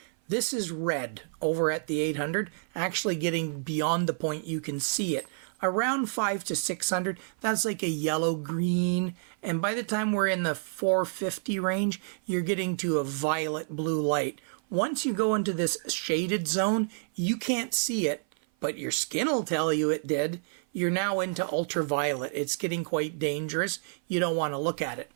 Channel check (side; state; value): left; silent; 55 dB below the other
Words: This is red over at the 800, actually getting beyond the point you can see it. Around 5 to 600, that's like a yellow-green, and by the time we're in the 450 range, you're getting to a violet-blue light. Once you go into this shaded zone, you can't see it, but your skin will tell you it did. You're now into ultraviolet. It's getting quite dangerous. You don't want to look at it.